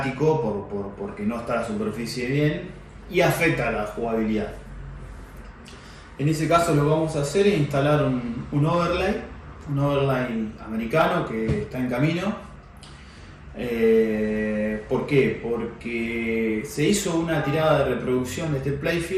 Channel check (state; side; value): identical; both; correlation 1.00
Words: porque no está la superficie bien y afecta a la jugabilidad. En ese caso, lo que vamos a hacer es instalar un overlay americano que está en camino. ¿Por qué? Porque se hizo una tirada de reproducción de este